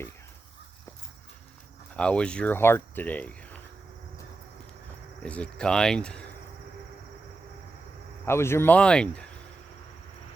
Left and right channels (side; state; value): left; quieter; 3.4 dB